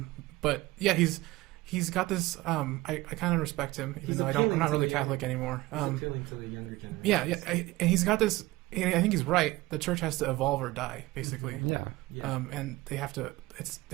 But yeah, he's got this. I kind of respect him, even He's though I'm appealing not to really the Catholic anymore. He's appealing to the younger generation. Yeah, and he's got this. And I think he's right. The church has to evolve or die, basically. Yeah. Yeah. And they have to.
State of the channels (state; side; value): quieter; left; 19.5 dB